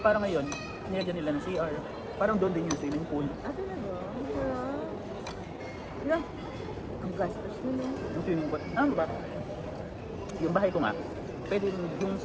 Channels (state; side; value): identical; both; correlation 1.00